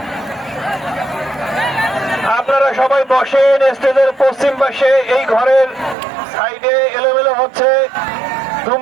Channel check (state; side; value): drops out; left; at 6.0 s